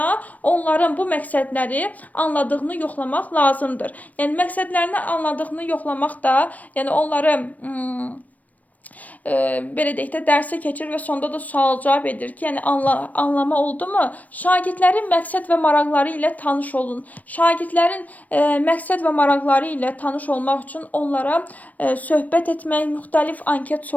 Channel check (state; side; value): late; right; 0.074 ms